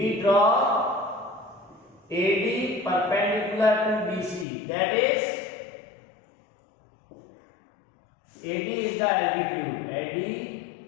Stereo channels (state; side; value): drops out; right; at 4.5 s